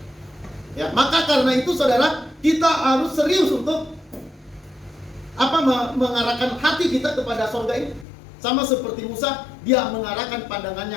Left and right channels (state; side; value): drops out; right; at 8.1 s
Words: Ya, maka karena itu saudara, kita harus serius untuk mengarahkan hati kita kepada sorga ini. Sama seperti Musa, dia mengarahkan